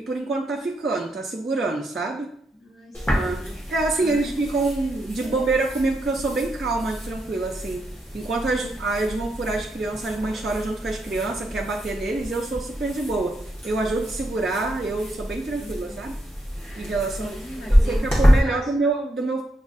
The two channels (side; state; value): both; normal; correlation 0.81